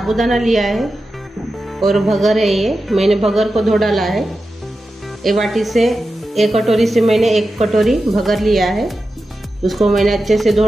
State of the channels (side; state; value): both; normal; correlation 0.92